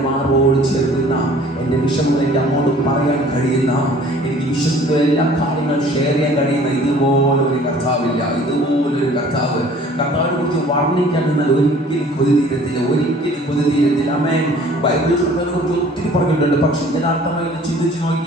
മാറോട് ചേർക്കുന്ന, എൻ്റെ വിഷമങ്ങൾ എൻ്റെ അങ്ങോട്ട് പറയാൻ കഴിയുന്ന, എനിക്ക് വിശ്വസിക്കുന്ന എല്ലാ കാര്യങ്ങളും ഷെയർ ചെയ്യാൻ കഴിയുന്ന ഇതുപോലൊരു കർത്താവില്ല. ഇതുപോലൊരു കർത്താവിനെ കുറിച്ച് വർണ്ണിക്കാൻ നിന്നാൽ ഒരിക്കലും കൊതിതീരത്തില്ല. ആമേൻ. ബൈബിളിൽ കർത്താവിനെ കുറിച്ച് ഒത്തിരി പറഞ്ഞിട്ടുണ്ട്. പക്ഷെ യഥാർത്ഥമായി ചിന്തിച്ച്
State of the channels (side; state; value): both; normal; correlation 0.51